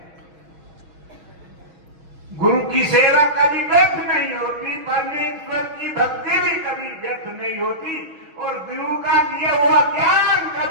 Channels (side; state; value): left; late; 6.2 ms